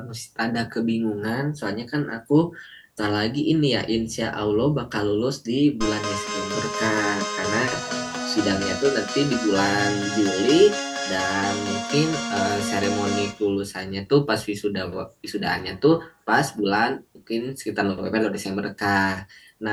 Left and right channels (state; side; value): identical; both; correlation 1.00